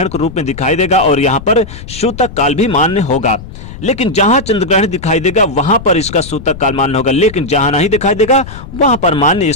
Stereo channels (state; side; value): noise; left; rumble, 13 dB below the sound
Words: के रूप में दिखाई देगा और यहाँ पर सूतक काल भी मान्य होगा। लेकिन जहाँ चंद्र ग्रहण दिखाई देगा वहाँ पर इसका सूतक काल मान्य होगा, लेकिन जहाँ नहीं दिखाई देगा वहाँ पर मान्य